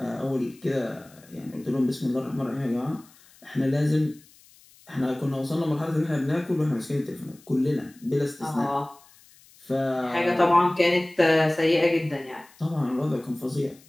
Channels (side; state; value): left; noise; hiss, 27 dB below the sound